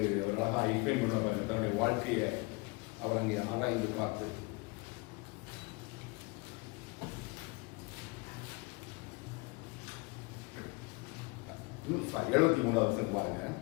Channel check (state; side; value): quieter; right; 27.3 dB